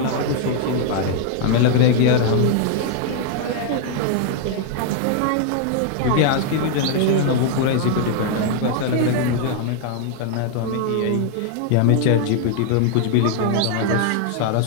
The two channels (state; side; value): different; both; correlation 0.00